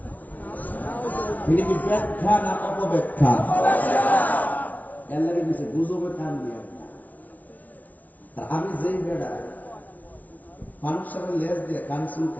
এটা কি ব্যাখ্যা না অপব্যাখ্যা? এর লাগে কিছু গুজবে কান দিয়া। আমি যেই বেড়া মানুষের সাথে লেজ দিয়ে কান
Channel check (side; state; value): right; late; 0.082 ms